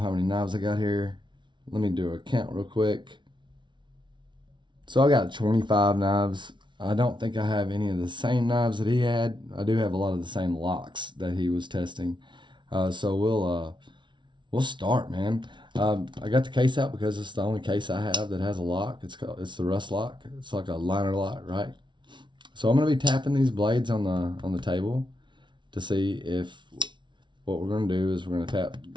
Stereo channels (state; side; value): late; left; 0.23 ms